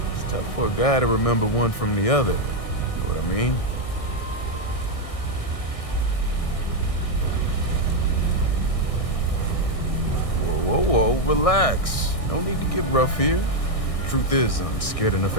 It's tough for a guy to remember one from the other. You know what I mean? Whoa, relax. No need to get rough here. Truth is, I'm scared enough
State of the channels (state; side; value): late; right; 1.6 ms